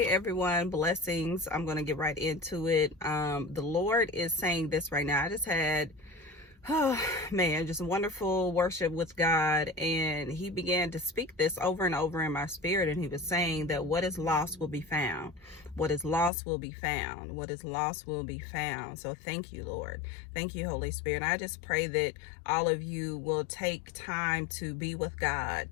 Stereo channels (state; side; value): drops out; right; at 16.3 s